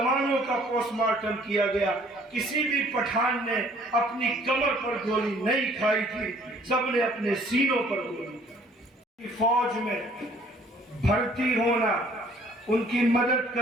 का पोस्टमार्टम किया गया, किसी भी पठान ने अपनी कमर पर गोली नहीं खाई थी, सबने अपने सीनों पर गोली खाई। फौज में भर्ती होना, उनकी मदद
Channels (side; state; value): both; normal; correlation 0.58